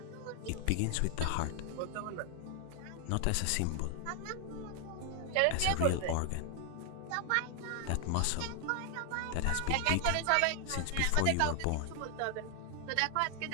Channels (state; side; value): different; both; correlation 0.00